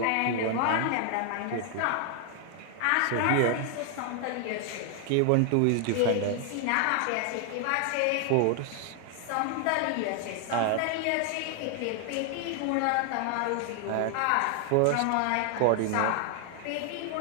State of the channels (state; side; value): different; both; correlation 0.00